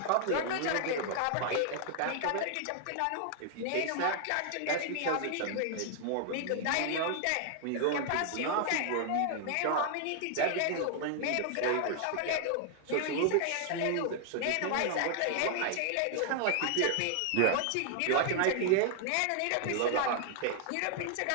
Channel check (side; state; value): both; different; correlation 0.00